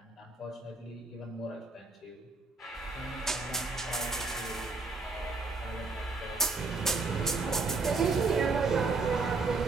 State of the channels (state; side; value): quieter; left; 3.8 dB